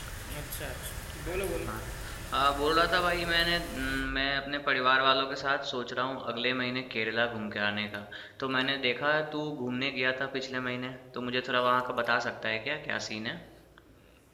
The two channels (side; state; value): both; identical; correlation 1.00